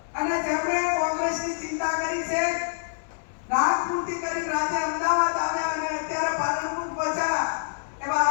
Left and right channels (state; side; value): silent; right; digital silence